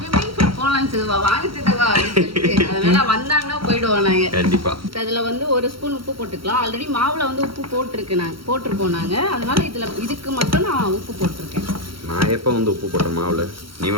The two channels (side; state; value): left; late; 0.74 ms